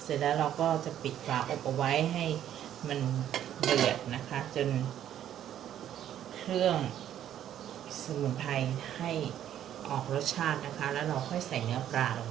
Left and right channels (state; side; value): quieter; left; 10.9 dB